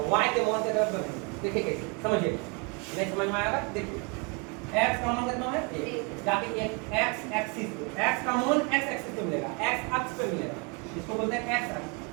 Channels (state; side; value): quieter; left; 32.9 dB